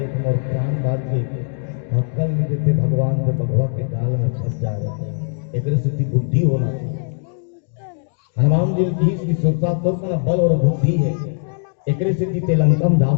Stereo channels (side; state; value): right; silent; digital silence